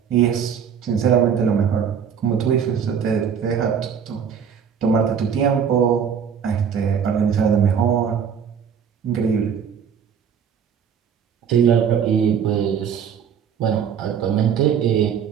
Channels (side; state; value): left; quieter; 7.6 dB